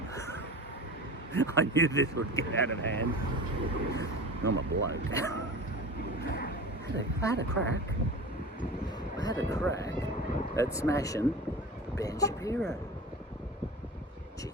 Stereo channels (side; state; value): both; normal; correlation 0.33